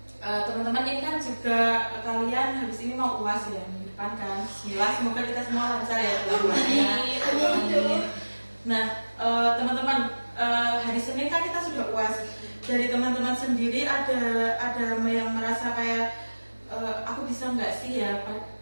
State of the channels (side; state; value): both; inverted; correlation -1.00